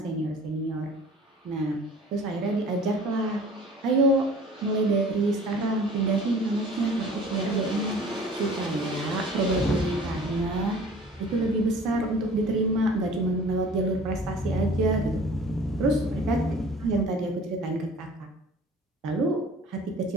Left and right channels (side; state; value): both; normal; correlation 0.47